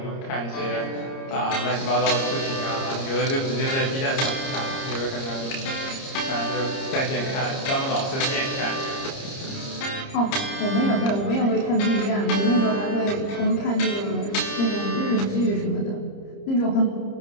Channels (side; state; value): right; late; 30 ms